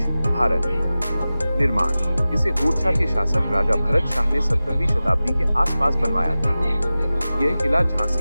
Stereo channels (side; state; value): both; inverted; correlation -0.96